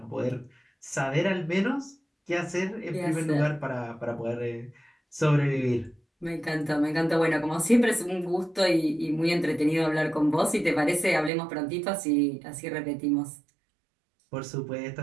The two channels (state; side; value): drops out; left; at 11.3 s